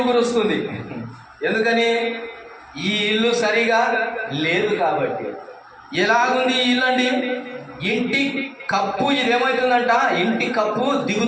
కురుస్తుంది. ఎందుకని? ఈ ఇల్లు సరిగా లేదు కాబట్టి. ఎలాగుంది ఈ ఇల్లు అండి? ఇంటి కప్పు ఇదేమవుతుందంట? ఇంటి కప్పు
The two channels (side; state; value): both; identical; correlation 1.00